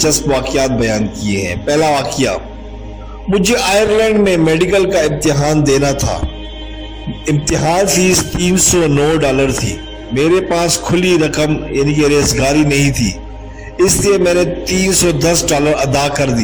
वाकयात बयान किए हैं। पहला वाकया, मुझे आयरलैंड में मेडिकल का इम्तिहान देना था। इम्तिहान फीस $309 थी। मेरे पास खुली रकम यानी कि रेज़गारी नहीं थी, इसलिए मैंने $310 अदा कर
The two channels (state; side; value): identical; both; correlation 1.00